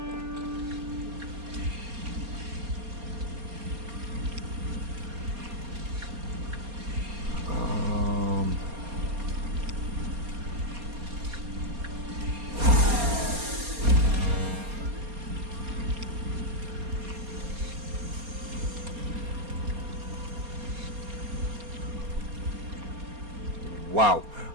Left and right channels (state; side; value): late; left; 4.3 ms